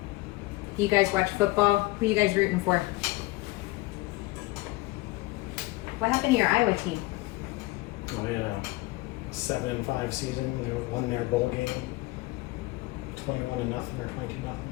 You guys watch football? Who are you guys rooting for? What happened to your Iowa team? Oh yeah, 7-5 season. They won their bowl game, 21-0 or 22-0. It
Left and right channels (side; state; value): right; quieter; 20.9 dB